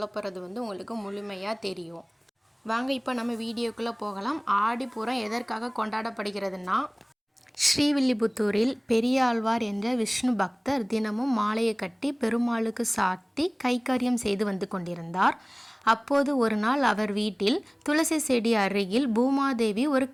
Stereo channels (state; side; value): identical; both; correlation 1.00